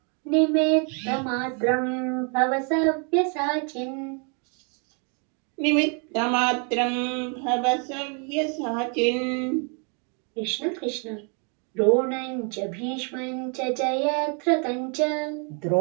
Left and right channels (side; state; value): left; quieter; 38.4 dB